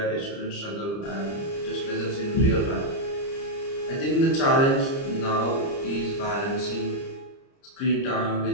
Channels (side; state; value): right; late; 30 ms